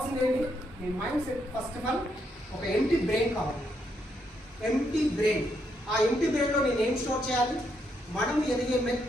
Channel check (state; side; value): normal; both; correlation 0.77